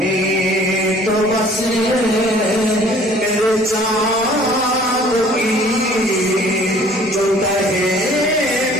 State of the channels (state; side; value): noise; right; rumble, 28 dB below the sound